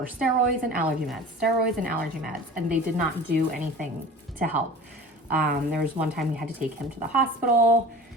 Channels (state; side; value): normal; both; correlation 0.38